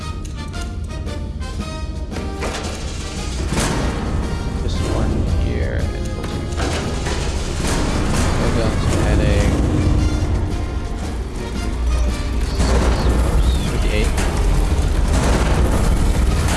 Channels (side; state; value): both; identical; correlation 1.00